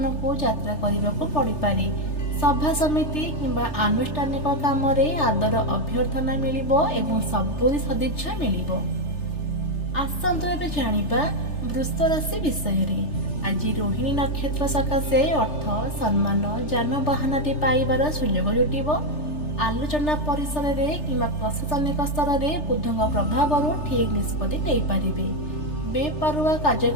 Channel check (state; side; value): late; right; 3.3 ms